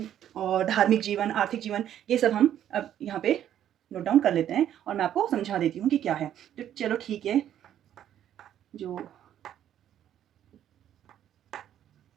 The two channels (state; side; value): quieter; left; 10.7 dB